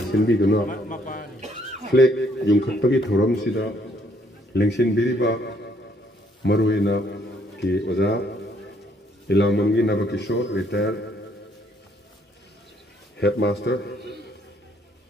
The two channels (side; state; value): both; normal; correlation 0.67